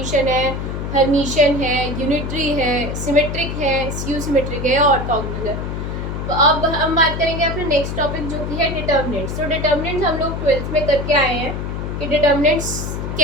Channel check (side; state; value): left; noise; hum, 4 dB below the sound